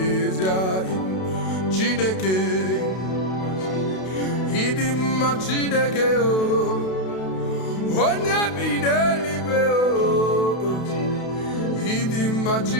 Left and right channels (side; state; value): right; late; 32 ms